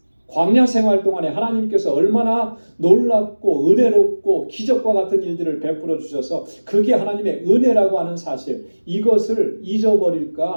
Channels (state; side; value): inverted; both; correlation -1.00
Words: 광야 생활 동안에 하나님께서 얼마나 놀랍고 은혜롭고 기적과 같은 일들을 베풀어 주셔서 그게 하나님의 은혜라고 하는 사실, 이것을